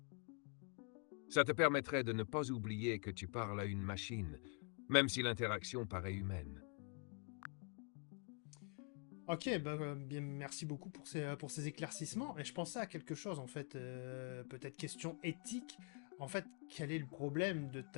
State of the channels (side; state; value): right; quieter; 39.2 dB